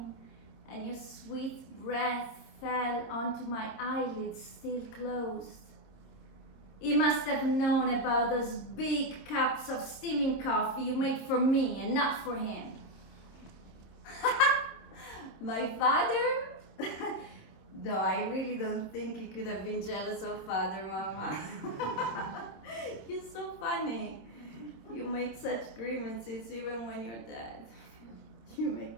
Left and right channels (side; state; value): right; late; 26 ms